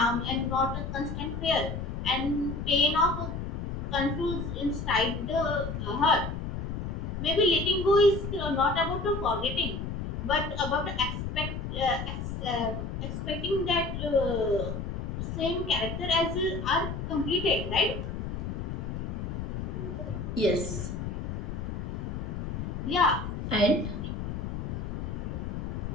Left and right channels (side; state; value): left; noise; rumble, 4 dB below the sound